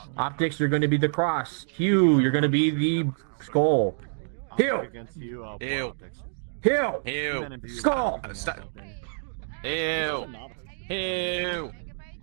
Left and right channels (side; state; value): left; silent; digital silence